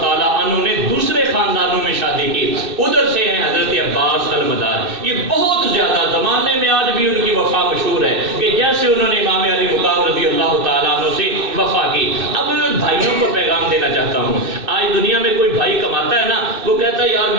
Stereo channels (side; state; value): left; late; 2.6 ms